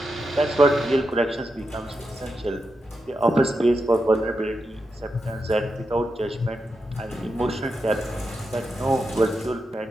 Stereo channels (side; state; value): both; normal; correlation 0.87